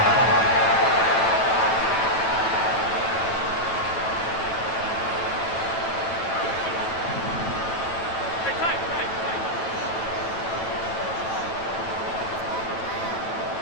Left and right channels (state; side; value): late; right; 9.1 ms